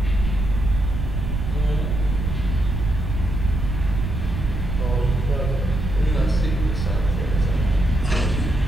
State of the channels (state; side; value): noise; right; rumble, 3 dB below the sound